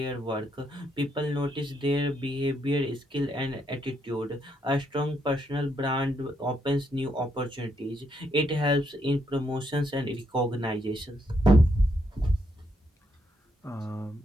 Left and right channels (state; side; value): normal; both; correlation 0.76